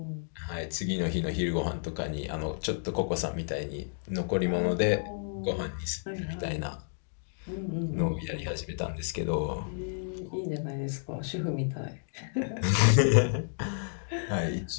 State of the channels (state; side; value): silent; right; digital silence